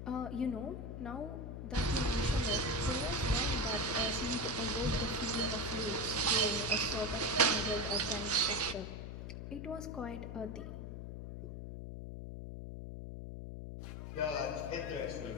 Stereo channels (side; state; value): left; noise; hum, 8 dB below the sound